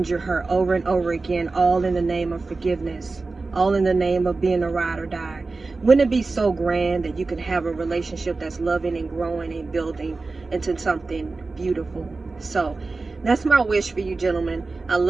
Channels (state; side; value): quieter; left; 3.7 dB